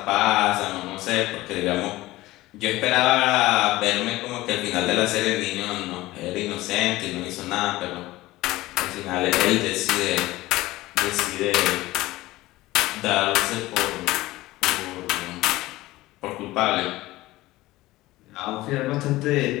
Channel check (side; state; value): right; quieter; 18.0 dB